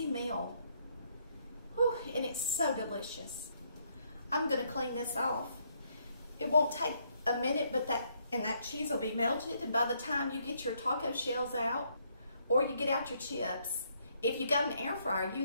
meal? Whew, and it's so delicious. I'm gonna clean this off. It won't take a minute, but that cheese will be melted, and by the time you get your taco shells out, or you get out your chips, if you got an air fryer,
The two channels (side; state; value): both; inverted; correlation -0.72